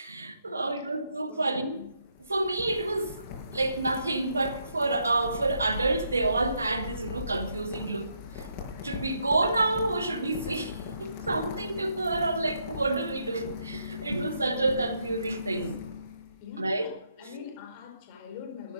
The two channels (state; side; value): inverted; both; correlation -0.76